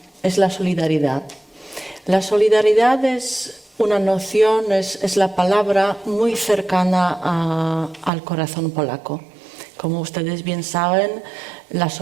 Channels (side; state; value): left; drops out; at 8.1 s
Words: es la solidaridad. La solidaridad es una noción, es la palabra muy cercana al corazón polaco. Como ustedes bien saben, la